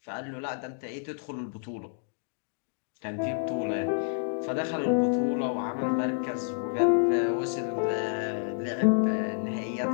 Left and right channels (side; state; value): right; silent; digital silence